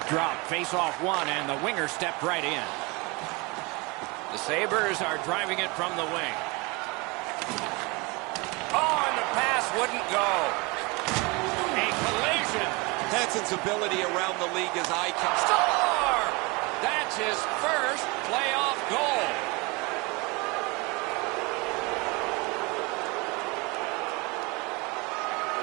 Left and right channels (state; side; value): quieter; left; 27.0 dB